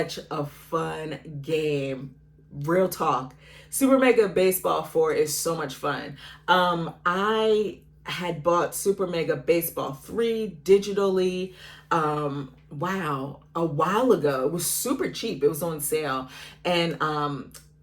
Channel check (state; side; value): identical; both; correlation 1.00